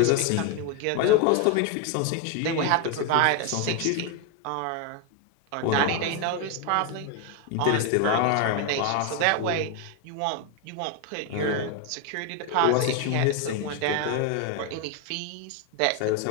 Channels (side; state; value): both; different; correlation 0.01